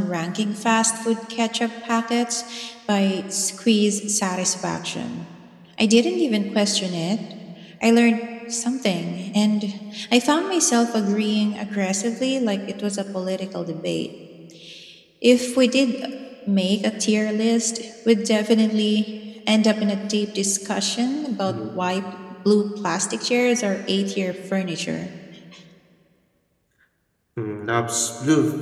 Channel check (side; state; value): both; identical; correlation 1.00